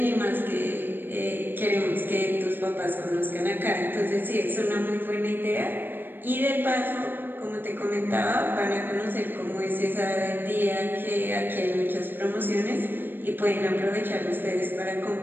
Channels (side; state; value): left; late; 0.095 ms